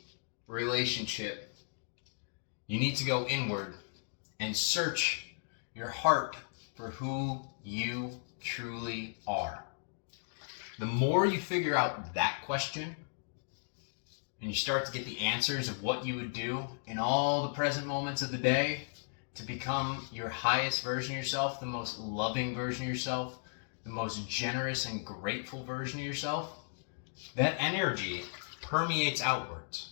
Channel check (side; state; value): right; silent; digital silence